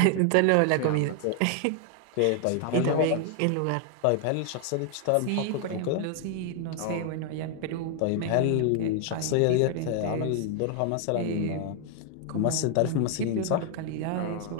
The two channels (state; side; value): different; both; correlation 0.00